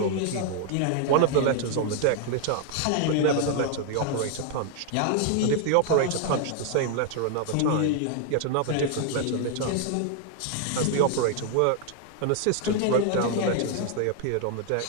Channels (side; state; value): both; different; correlation 0.00